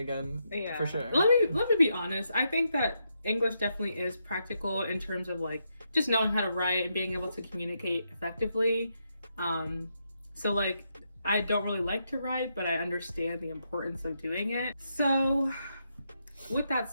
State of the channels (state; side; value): inverted; both; correlation -0.81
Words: for sure. Let me be honest. I think that English definitely is practical in terms of like just knowing how to write and being able to communicate effectively. So like I don't really like to write, but I understand the importance of doing it. So with that